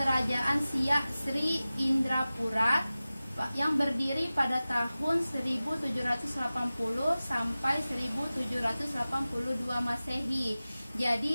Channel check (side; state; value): both; inverted; correlation -0.96